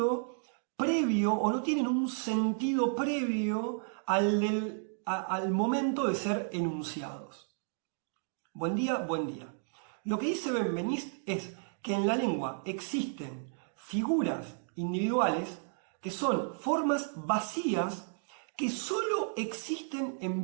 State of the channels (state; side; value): silent; left; digital silence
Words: previo o no tienen un sentido previo al momento de ser enunciados. Buen día, buen día. Lo que dice Benveniste es que en la lengua existen figuras individuales que son formas vacías que solo existen en